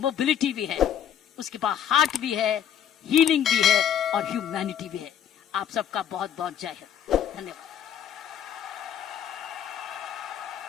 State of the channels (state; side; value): quieter; right; 9.5 dB